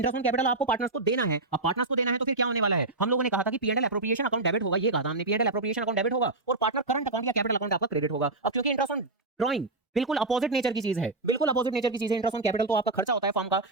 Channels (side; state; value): left; quieter; 3.1 dB